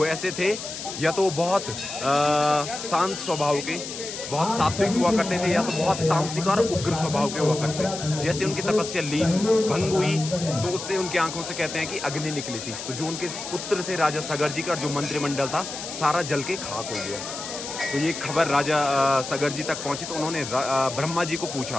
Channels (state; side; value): noise; left; hiss, 8 dB below the sound